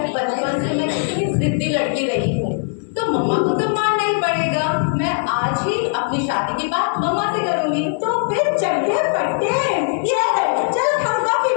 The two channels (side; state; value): right; silent; 66 dB below the other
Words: बचपन से मैं कितनी जिद्दी लड़की रही हूँ, तो मम्मा को तो मानना ही पड़ेगा। मैं आज ही अपनी शादी की बात मम्मा से करूंगी। तो फिर चलते पड़ते चलो हम कॉफी